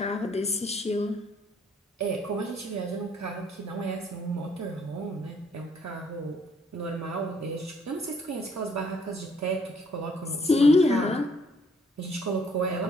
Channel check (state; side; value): normal; both; correlation 0.65